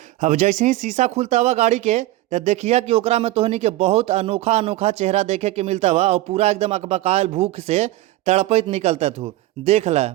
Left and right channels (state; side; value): quieter; left; 16.6 dB